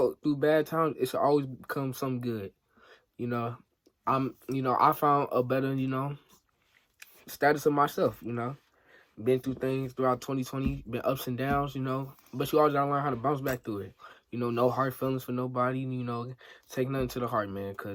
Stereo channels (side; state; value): both; identical; correlation 1.00